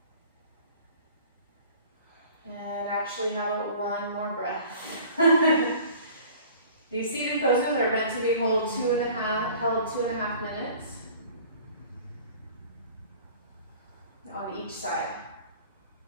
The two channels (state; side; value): inverted; both; correlation -0.47